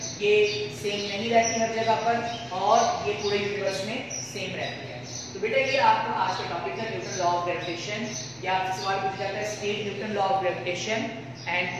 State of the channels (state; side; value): identical; both; correlation 1.00